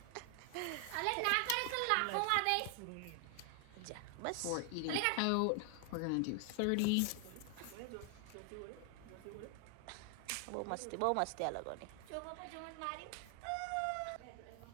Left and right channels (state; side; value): different; both; correlation 0.00